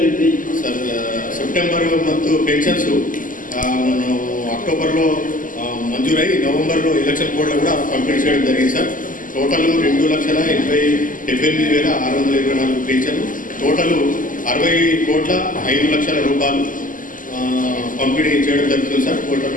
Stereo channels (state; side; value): late; right; 0.38 ms